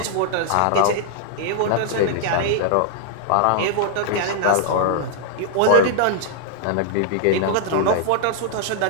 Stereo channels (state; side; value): different; both; correlation -0.01